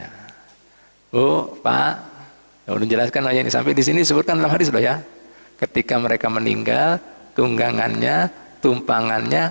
Oh, Pak, udah jelaskan aja ini sampai di sini disebutkan dalam hadis loh ya. Ketika mereka meninggal, tunggangannya,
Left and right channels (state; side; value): inverted; both; correlation -1.00